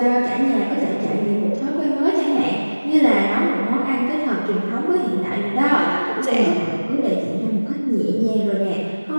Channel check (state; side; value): inverted; both; correlation -1.00